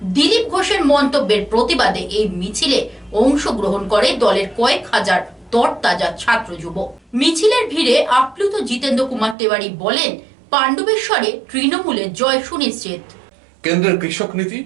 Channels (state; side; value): drops out; left; at 9.3 s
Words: দিলীপ ঘোষের মন্তব্যের প্রতিবাদে এই মিছিলে অংশগ্রহণ করে দলের কয়েক হাজার তরতাজা ছাত্র যুব। মিছিলের ভিড়ে আপ্লুত জিতেন্দ্র কুমার তেওয়ারি বলেন, পাণ্ডবেশ্বরে তৃণমূলের জয় সুনিশ্চিত। কেন্দ্রের কৃষক নীতি,